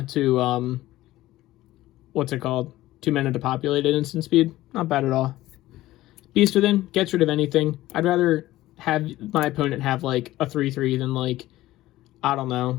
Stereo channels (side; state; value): right; quieter; 16.2 dB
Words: to, what's it called? 2 mana to populate at instant speed. Not bad at all. Beast Within. Gets rid of anything. I'd rather have my opponent have, a 3/3 than, I don't